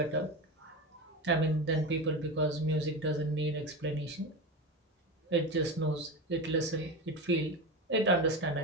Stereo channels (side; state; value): both; normal; correlation 0.22